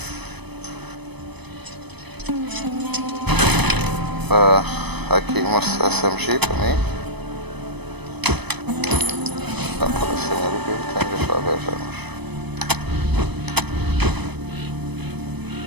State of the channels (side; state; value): left; late; 0.99 ms